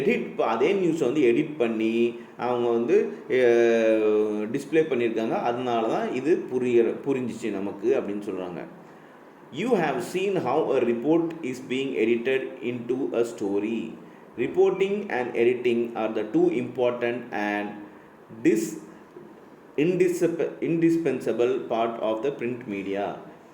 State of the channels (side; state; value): both; identical; correlation 1.00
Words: அதே நியூஸை வந்து எடிட் பண்ணி அவங்க வந்து டிஸ்பிளே பண்ணியிருக்காங்க. அதனால தான் இது புரிஞ்சிச்சு நமக்கு அப்படின்னு சொல்கிறாங்க. You have seen how a report is being edited into a story. Reporting and editing are the two important and indispensable part of the print media.